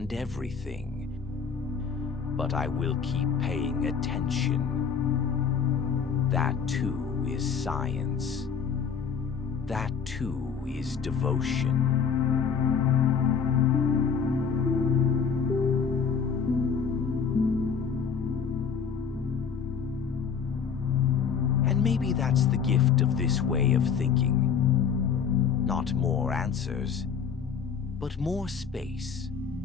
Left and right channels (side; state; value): right; quieter; 6.6 dB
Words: everything, but I will keep paying attention. That too is science. That too is devotion. And maybe that's the gift of this way of thinking. Not more answers, but more space.